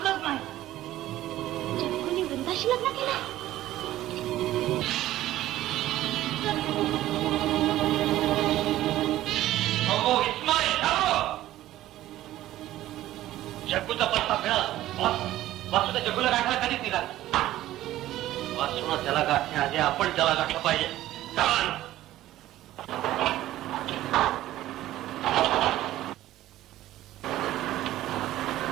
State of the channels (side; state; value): left; quieter; 14.6 dB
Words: नाही. जग्गूने वृंदाशी लग्न केलं. जग्गूचा पत्ता मिळाला. वासूचा जग्गूला गाठायला कधीच निघाला. वासून त्याला गाठण्याआधी आपण त्याला गाठलं पाहिजे. चला.